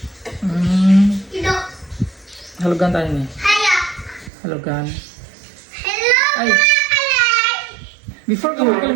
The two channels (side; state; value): left; drops out; at 4.3 s